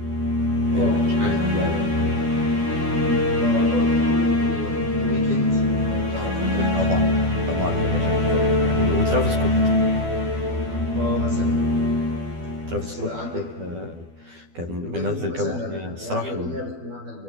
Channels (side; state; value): left; late; 12 ms